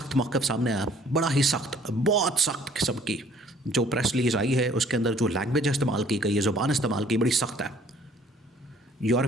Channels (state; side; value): normal; both; correlation 0.58